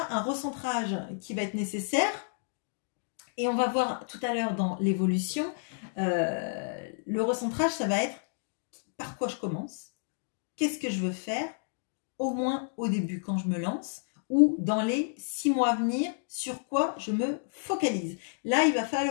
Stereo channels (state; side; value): silent; right; digital silence